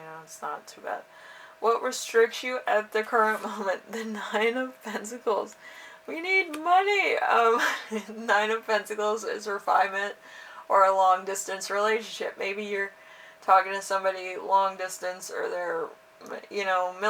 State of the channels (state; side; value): identical; both; correlation 1.00